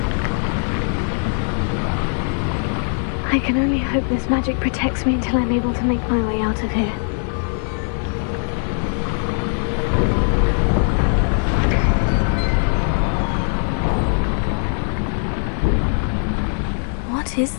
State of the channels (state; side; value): silent; right; 55 dB below the other